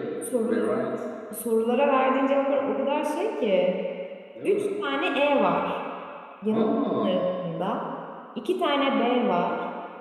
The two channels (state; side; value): identical; both; correlation 1.00